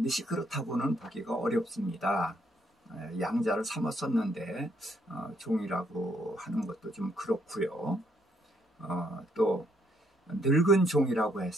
그렇다고는 보기가 어렵습니다. 양자를 삼았었는데 종이라고 하는 것도 좀 그렇고요. 또 늙은 종이라고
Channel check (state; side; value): normal; both; correlation 0.72